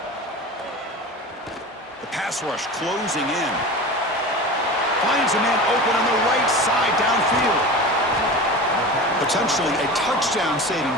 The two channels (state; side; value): normal; both; correlation 0.32